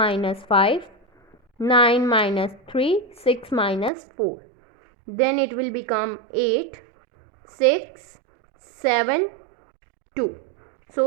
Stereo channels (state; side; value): drops out; left; at 3.9 s